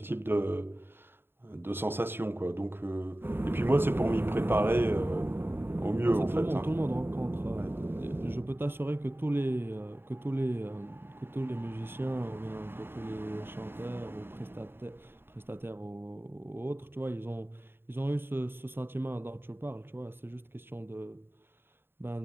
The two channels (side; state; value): left; late; 0.11 ms